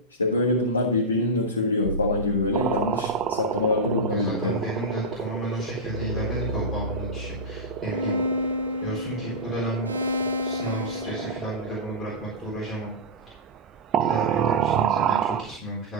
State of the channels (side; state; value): both; normal; correlation -0.11